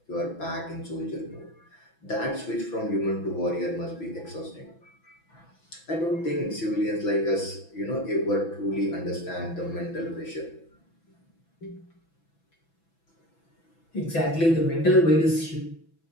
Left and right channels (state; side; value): late; right; 6.0 ms